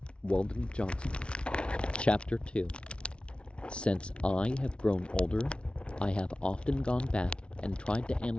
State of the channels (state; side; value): late; right; 0.058 ms